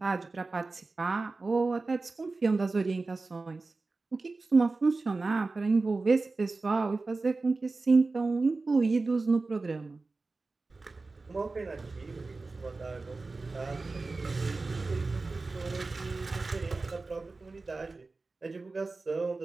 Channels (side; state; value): left; quieter; 3.7 dB